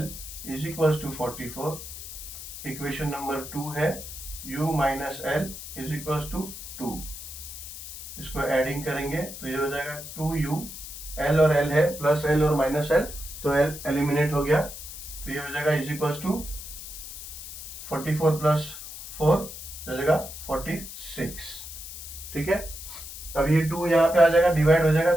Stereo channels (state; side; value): noise; left; hiss, 11 dB below the sound